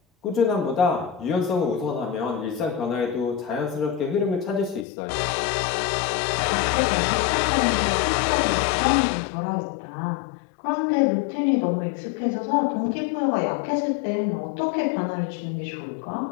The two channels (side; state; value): right; drops out; at 4.9 s